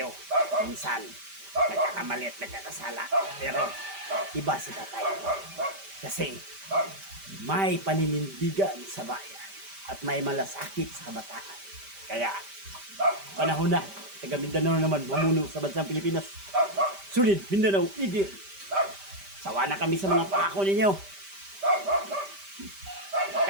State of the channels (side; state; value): left; late; 5.1 ms